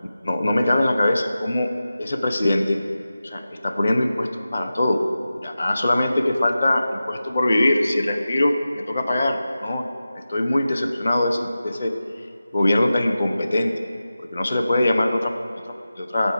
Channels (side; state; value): both; inverted; correlation -0.93